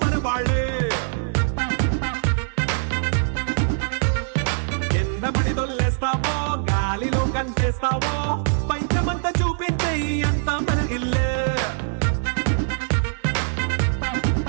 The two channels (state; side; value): silent; left; 64 dB below the other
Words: మన వాళ్ళే ఎన్న పడి దొల్లేస్తావో గాలిలో కంటేస్తావో పైకమంతా చూపించే అంతా మన ఇల్లే